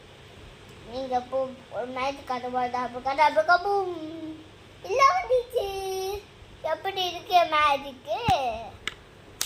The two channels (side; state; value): both; identical; correlation 1.00